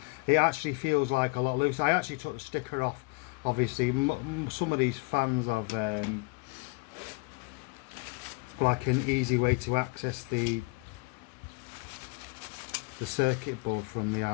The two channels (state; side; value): quieter; right; 29.0 dB